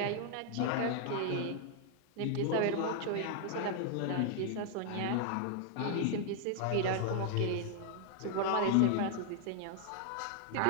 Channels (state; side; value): different; both; correlation 0.00